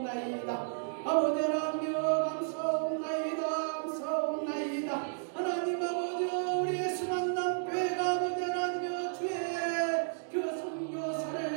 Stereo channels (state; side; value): silent; left; digital silence